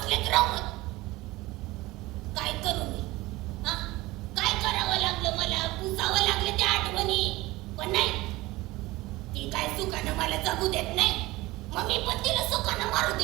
राहून. काय करू मी? काय करावं लागलं मला? पुसावं लागलं त्या आठवणी. पण नाही, सुखानं मला जगू देत नाही मग मी पण तिला सुखानं मारू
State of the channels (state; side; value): quieter; left; 19.7 dB